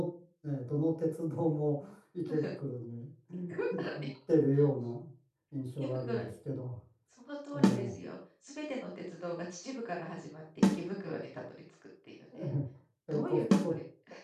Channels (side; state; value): both; identical; correlation 1.00